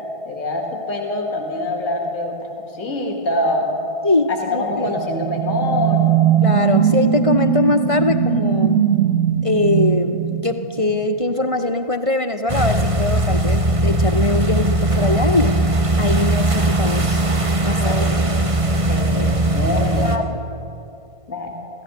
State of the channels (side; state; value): left; late; 1.5 ms